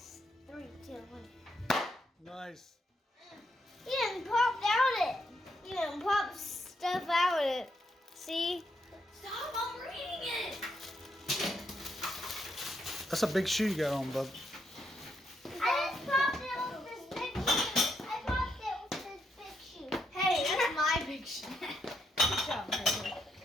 3, 2, 1. Nice. You didn't pop out it. You didn't pop stuff out it. See? Stop, I'm reading it. That's a big shoe you got on, bub. I just popped it with this big shoe. I popped it with this big shoe. Hey, that's my big shit. Good job, Marbury.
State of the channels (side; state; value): both; normal; correlation 0.79